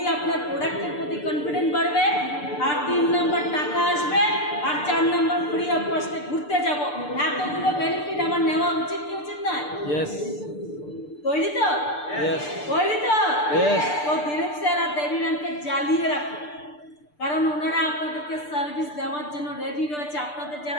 আপনার প্রোডাক্টের প্রতি কনফিডেন্ট বাড়বে, আর 3 নম্বর টাকা আসবে, আর 4 নম্বর ফ্রি অফ কস্টে ঘুরতে যাব। এতগুলো বেনিফিট আমার নেওয়া উচিত কি উচিত নয়? ইয়েস। তৈরি তো? ইয়েস। তৈরি তো? ইয়েস। তো দিলীপ স্যার আর দেবী ম্যামকে জ্বালিয়ে রাখুন, কারণ ওনারা আপনাদেরকে সার্ভিস দেওয়ার জন্য রেডি রয়েছে। আপনাদের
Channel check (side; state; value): right; late; 6.7 ms